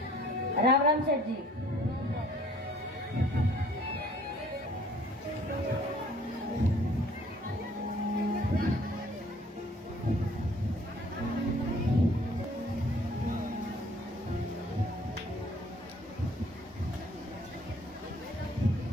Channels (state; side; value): normal; both; correlation 0.57